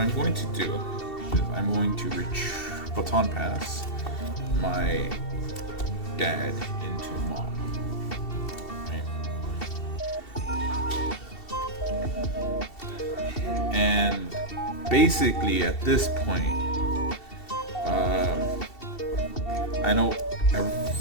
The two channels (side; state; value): right; late; 2.7 ms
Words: going to do is I'm going to baton pass my dad into mom. Right? And basically at this point, I know